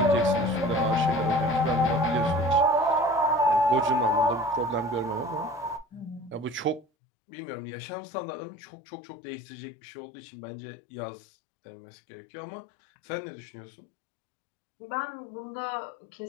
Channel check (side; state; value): right; drops out; at 6.9 s